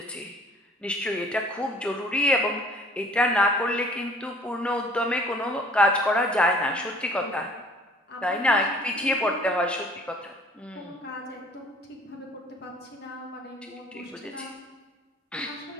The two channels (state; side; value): normal; both; correlation 0.53